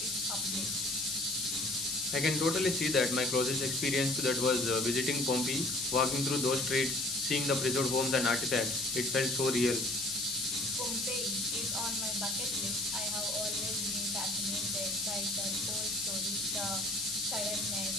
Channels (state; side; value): noise; left; hiss, 1 dB below the sound